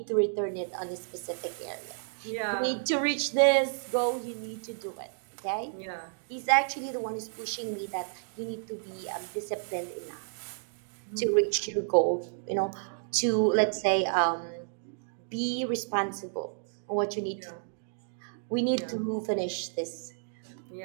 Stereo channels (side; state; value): left; silent; digital silence